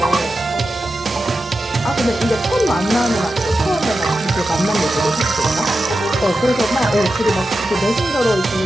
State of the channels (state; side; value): normal; both; correlation 0.91